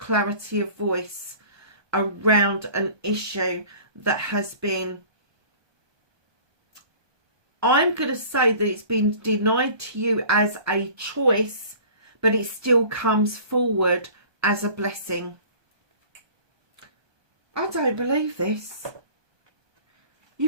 of voice around an issue that has been, I'm going to say that it's been denied to you as a choice, but it still comes forward as a blessing. I don't believe this.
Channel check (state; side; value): late; left; 1.2 ms